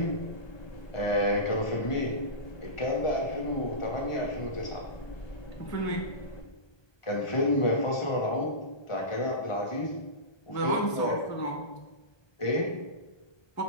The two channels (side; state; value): right; late; 1.2 ms